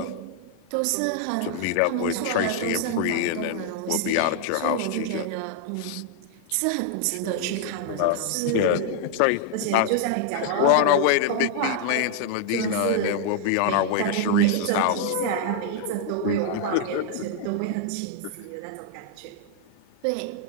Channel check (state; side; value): different; both; correlation 0.00